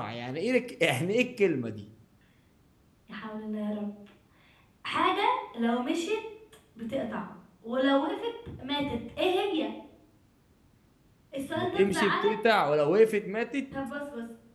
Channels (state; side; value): identical; both; correlation 1.00